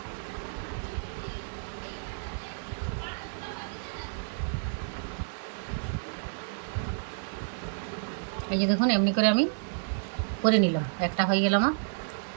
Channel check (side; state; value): left; silent; digital silence